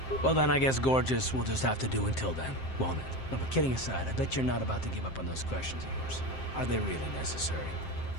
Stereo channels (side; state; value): right; late; 7.6 ms